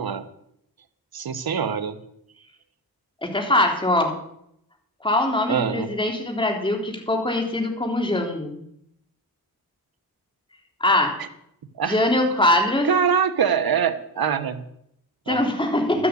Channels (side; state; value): both; normal; correlation 0.19